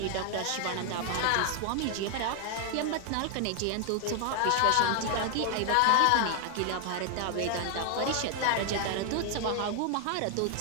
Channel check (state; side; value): different; both; correlation 0.00